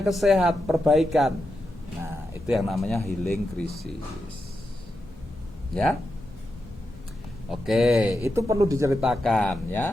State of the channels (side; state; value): both; normal; correlation 0.88